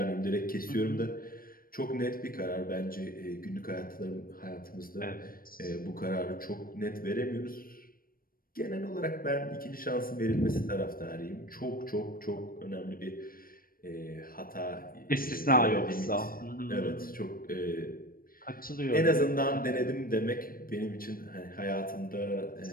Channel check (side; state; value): right; late; 0.42 ms